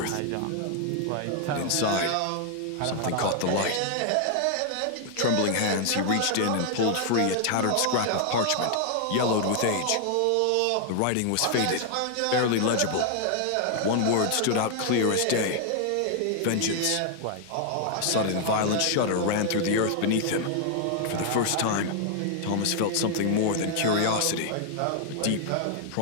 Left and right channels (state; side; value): different; both; correlation 0.00